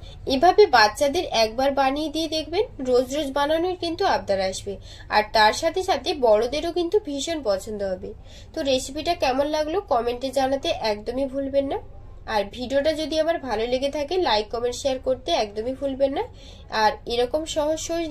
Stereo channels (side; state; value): both; identical; correlation 1.00